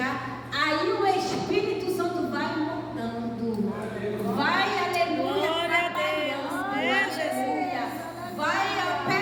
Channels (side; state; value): both; identical; correlation 1.00